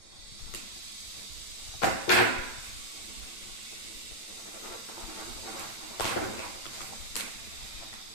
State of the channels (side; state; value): right; late; 9.0 ms